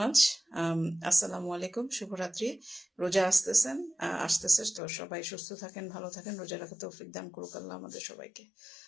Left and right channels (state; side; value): drops out; right; at 4.8 s